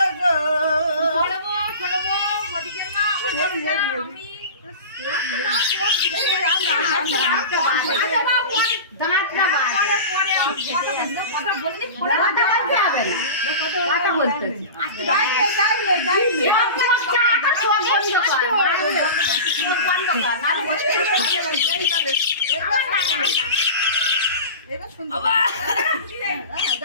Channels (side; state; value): both; inverted; correlation -0.31